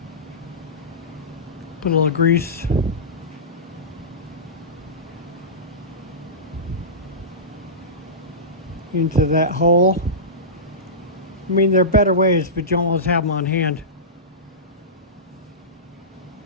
Put a little grease. Into that hole. I mean, there are better ways, but you almost have them on hand.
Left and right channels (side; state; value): both; normal; correlation -0.18